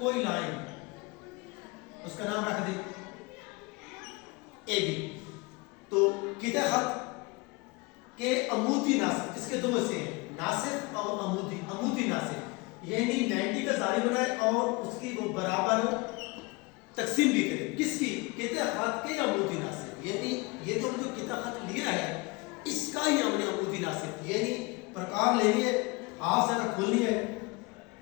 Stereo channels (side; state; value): right; quieter; 25.8 dB